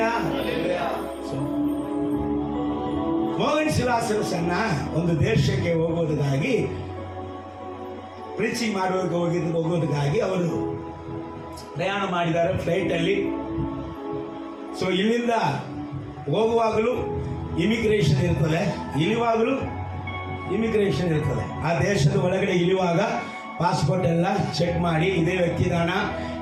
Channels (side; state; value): both; identical; correlation 1.00